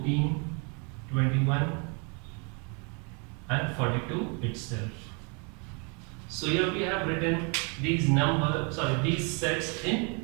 21 and 42 itself. So here we have written these these sets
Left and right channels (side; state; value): left; quieter; 34.8 dB